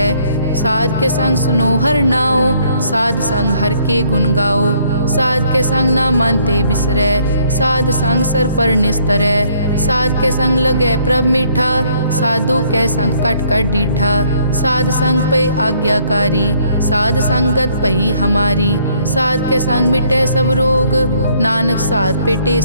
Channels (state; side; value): inverted; both; correlation -0.65